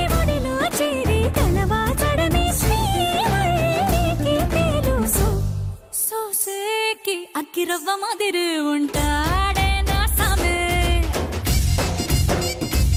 ఒడిలో చేరి తలవాచడమే శ్రీవల్లికి తెలుసు. సోసేకి అక్కిరవ్వ మాదిరి ఉంటా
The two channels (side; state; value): both; identical; correlation 1.00